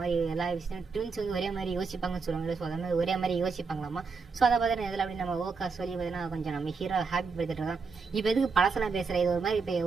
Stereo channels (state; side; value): quieter; left; 4.8 dB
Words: எல்லா விஷயம் ட்வின்ஸ் வந்து ஒரே மாதிரி யோசிப்பாங்கன்னு சொல்லுவாங்க. ஸோ அந்த மாதிரி ஒரே மாதிரி யோசிப்பாங்களாமா. ஸோ அதை பார்த்தீங்கன்னா இதில் அப்படி நம்ம ஓக்கா சொல்லி பார்த்தீங்கன்னா கொஞ்சம் நம்ம ஹீரோ ஹாப்பி படுத்திட்டு இருக்கோம். இப்போ எதுக்கு பழசெல்லாம் பேசுகிறேன், இது ஒரு மாதிரி இப்போ